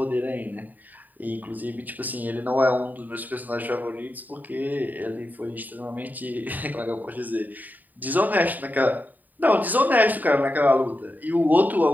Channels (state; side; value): late; left; 0.085 ms